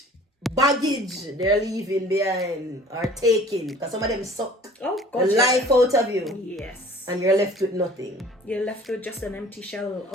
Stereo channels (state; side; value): normal; both; correlation 0.49